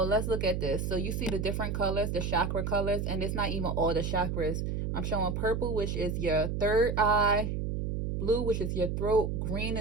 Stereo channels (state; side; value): noise; right; hum, 2 dB below the sound